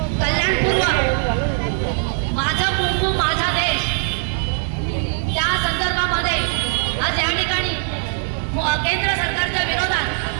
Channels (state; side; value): silent; left; 65 dB below the other